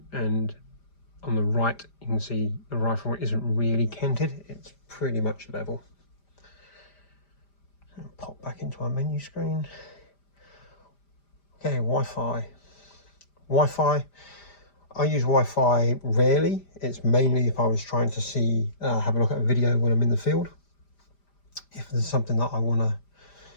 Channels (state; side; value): late; right; 5.0 ms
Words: And on the right, you can see the rifle isn't really canted. It's pretty much level. And pop back into our menu screen. Okay, Wi-Fi. Wi-Fi. I use Wi-Fi rarely. It's mainly if I was trying to see, have a look at a video when I'm in the field. If there's something that I want